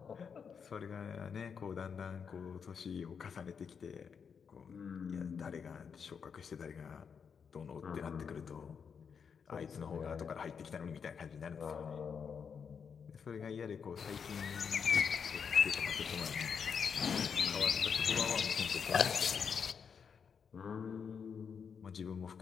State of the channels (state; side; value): quieter; right; 6.6 dB